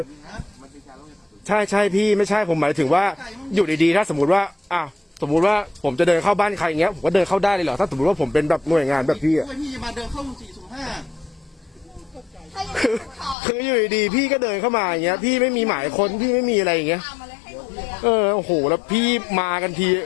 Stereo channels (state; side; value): drops out; right; at 13.4 s